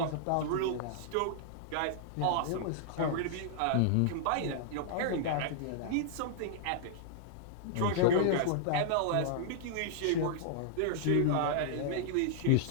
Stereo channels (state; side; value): different; both; correlation -0.01